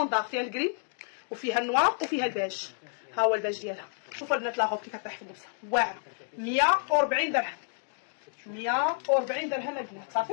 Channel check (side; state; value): right; silent; 58 dB below the other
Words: فيها الكري وفيها النوار وفيها الباج. ها هو الباج ديالها. شوفوا البنات لا غوب كيف طايح في اللبسه واعره 140 درهم. 140 درهم البنات